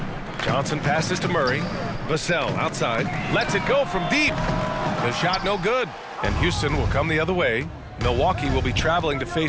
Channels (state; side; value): identical; both; correlation 1.00